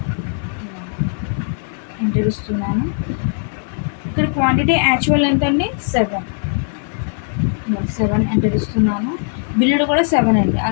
ఎంటర్ ఇస్తున్నాను. ఇక్కడ క్వాంటిటీ యాక్చువల్ ఎంత అండి, 7 ఎంటర్ ఇస్తున్నాను. బిల్లుడు కూడా 7 అండి,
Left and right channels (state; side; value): silent; right; 56 dB below the other